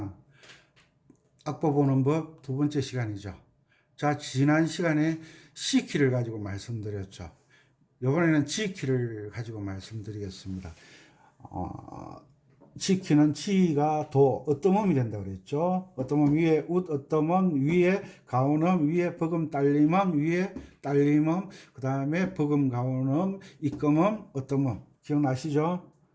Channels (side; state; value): both; identical; correlation 1.00